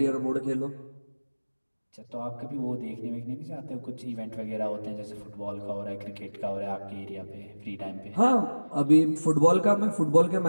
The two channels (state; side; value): inverted; both; correlation -1.00